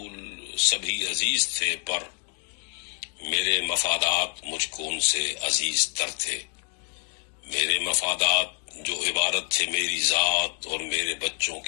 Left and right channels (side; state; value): right; quieter; 37.7 dB